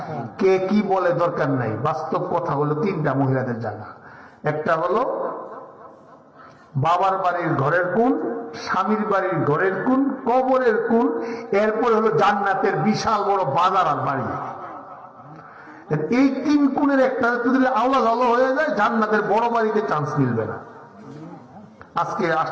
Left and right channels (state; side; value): identical; both; correlation 1.00